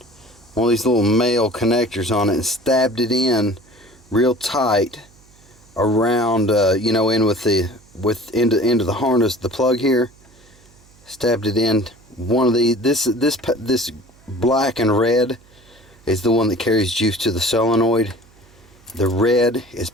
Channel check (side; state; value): right; noise; hum, 28 dB below the sound